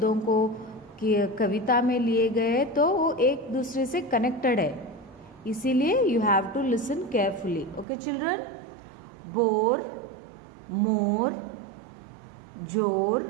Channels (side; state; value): left; drops out; at 7.9 s